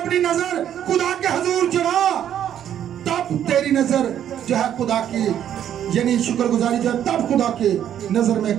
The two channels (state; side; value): quieter; left; 10.2 dB